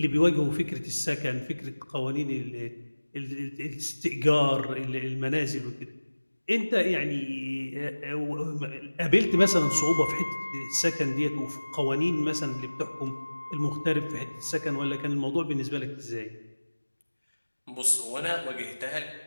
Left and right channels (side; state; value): both; inverted; correlation -1.00